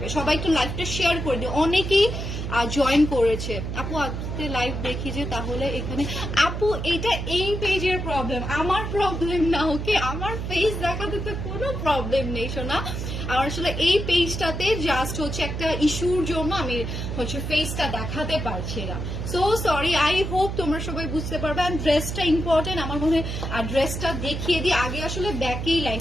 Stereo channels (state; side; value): noise; right; hum, 4 dB below the sound